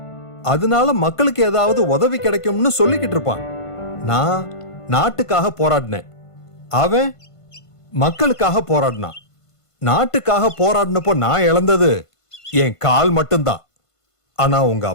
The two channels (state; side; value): late; right; 1.5 ms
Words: அதனால மக்களுக்கு ஏதாவது உதவி கிடைக்கும்னு சொல்லிக்கிட்டு இருப்பான். நான் நாட்டுக்காக போராடினேன், அவன் மக்களுக்காக போராடினான். நாட்டுக்காக போராடினப்போ நான் இழந்தது என் கால் மட்டும்தான். ஆனா உங்க